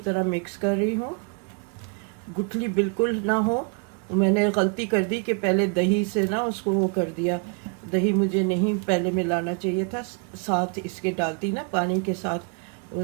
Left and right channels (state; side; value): quieter; left; 37.5 dB